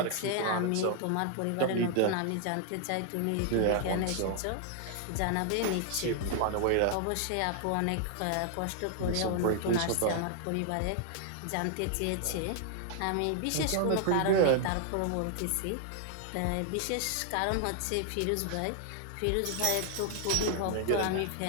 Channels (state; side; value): different; both; correlation 0.00